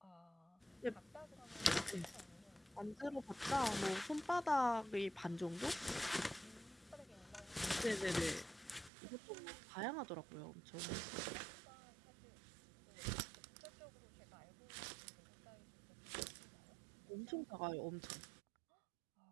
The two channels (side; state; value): left; drops out; at 8.9 s